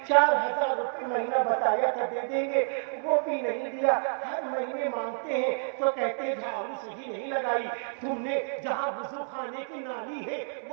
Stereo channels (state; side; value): silent; left; 58 dB below the other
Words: 4000 روپے مہینہ بتایا تھا دے دیں گے، وہ بھی نہیں دیا، ہر مہینے مانگتے ہیں تو کہتے ہیں جھاڑو صحیح نہیں لگائی، تم نے جہاں وضو خانے کی نالی ہے